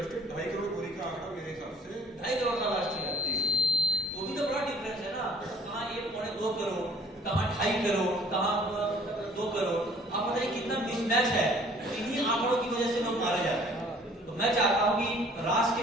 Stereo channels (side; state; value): both; normal; correlation 0.55